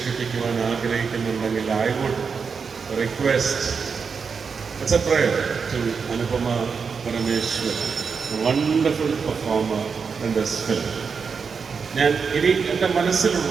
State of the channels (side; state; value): left; quieter; 5.7 dB